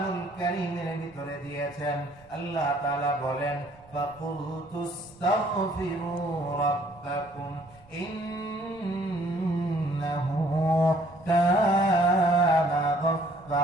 কারীমের ভিতরে দিয়েছেন। আল্লাহ তাআলা বলেন, ফাকুলতুস্তাগফিরু রাব্বাকুম ইন্নাহু কানা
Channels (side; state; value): right; noise; rumble, 26 dB below the sound